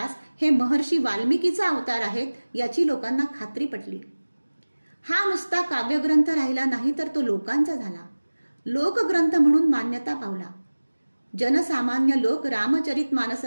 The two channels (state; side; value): inverted; both; correlation -1.00